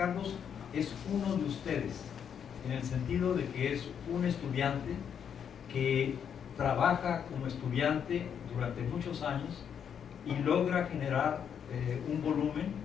es uno de ustedes, en el sentido de que es un estudiante que trabaja como estudiante durante muchos años y logra generar un volumen,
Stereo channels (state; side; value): quieter; right; 8.0 dB